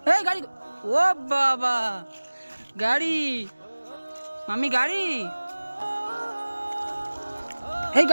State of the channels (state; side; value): inverted; both; correlation -1.00